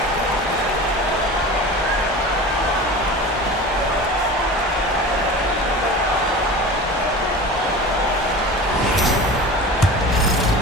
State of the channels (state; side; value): normal; both; correlation 0.34